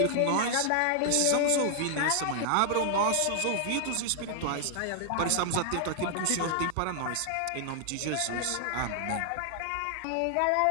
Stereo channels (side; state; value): both; different; correlation 0.00